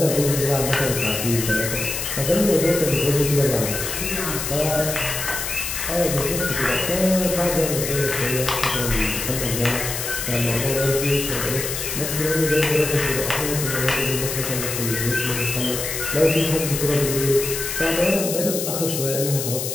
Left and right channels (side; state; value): left; noise; hiss, 4 dB below the sound